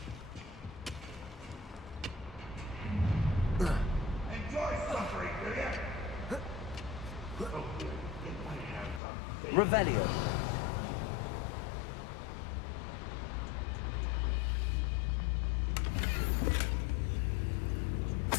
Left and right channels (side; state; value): right; drops out; at 9.0 s